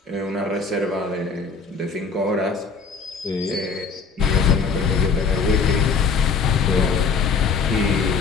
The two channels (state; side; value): quieter; right; 5.1 dB